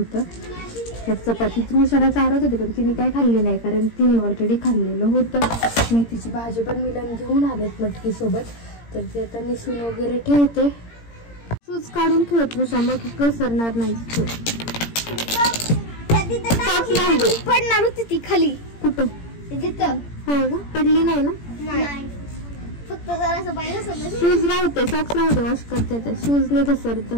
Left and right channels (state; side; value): late; right; 17 ms